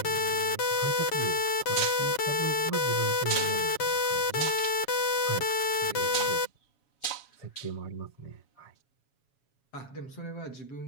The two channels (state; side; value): late; right; 7.2 ms